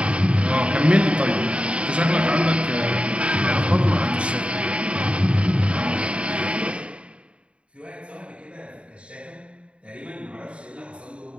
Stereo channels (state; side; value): late; left; 0.059 ms